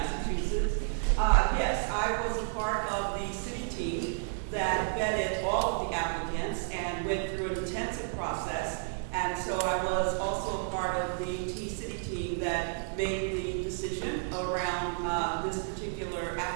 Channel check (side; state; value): left; silent; digital silence